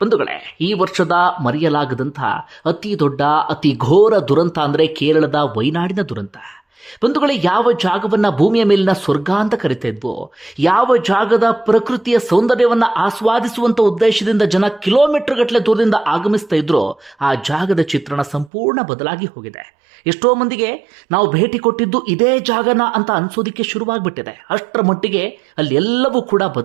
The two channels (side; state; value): left; drops out; at 18.5 s